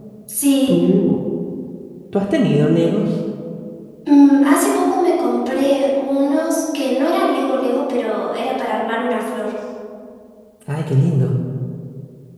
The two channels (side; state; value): both; identical; correlation 1.00